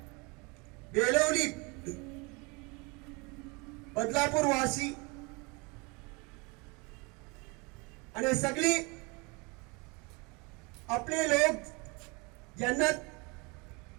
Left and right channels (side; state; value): left; quieter; 28.7 dB